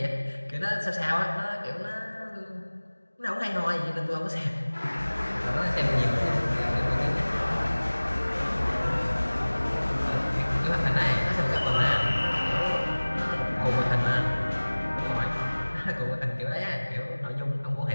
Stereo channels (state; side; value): inverted; both; correlation -1.00